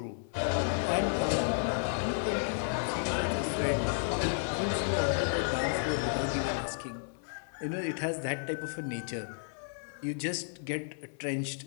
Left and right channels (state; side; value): silent; right; 56 dB below the other